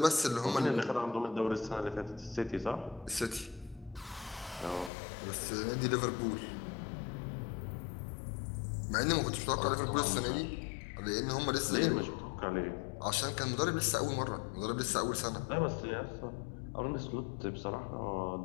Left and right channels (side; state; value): right; drops out; at 4.9 s